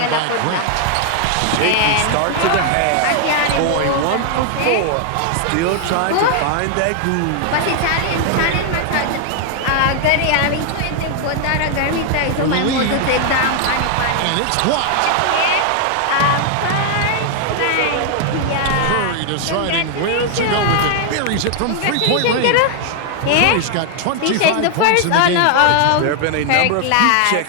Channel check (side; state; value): both; different; correlation 0.00